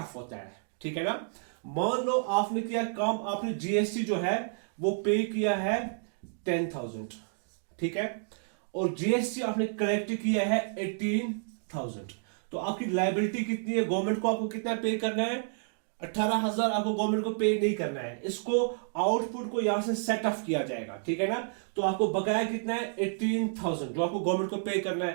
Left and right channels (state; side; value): silent; left; digital silence